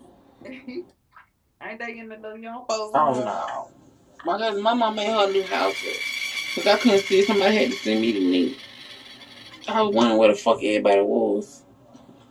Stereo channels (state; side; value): identical; both; correlation 1.00